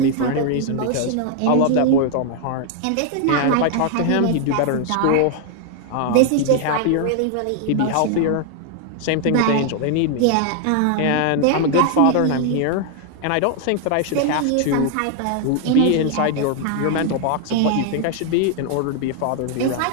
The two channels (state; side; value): different; both; correlation 0.00